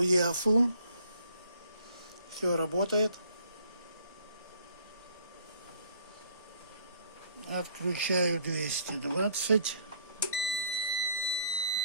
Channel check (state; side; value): inverted; both; correlation -0.62